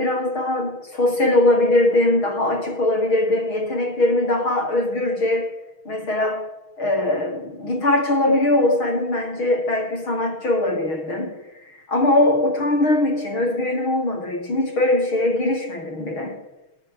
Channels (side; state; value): right; late; 6.4 ms